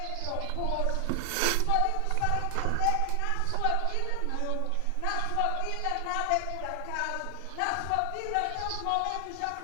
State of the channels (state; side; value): different; both; correlation 0.00